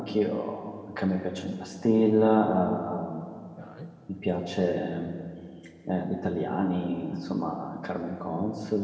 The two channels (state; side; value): identical; both; correlation 1.00